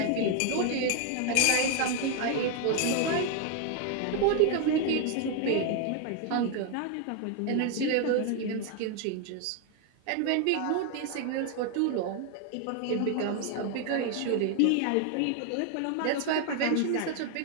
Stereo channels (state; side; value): different; both; correlation 0.01